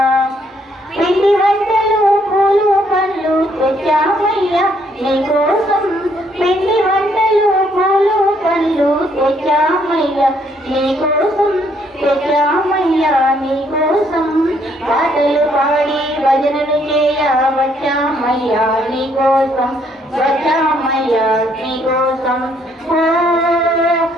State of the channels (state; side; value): normal; both; correlation 0.69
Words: పిండి వంటలు పూలు పండ్లు తెచ్చామయ్యా నీకోసం పిండి వంటలు పూలు పండ్లు తెచ్చామయ్యా నీకోసం తెచ్చామయ్యా నీకోసం పాటలు పాడి భజనలు చేయ వచ్చామయ్యా నీకోసం వచ్చామయ్యా నీకోసం ఓ